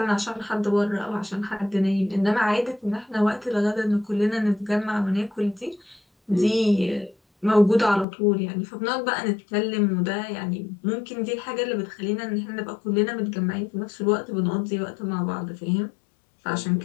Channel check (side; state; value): right; drops out; at 8.1 s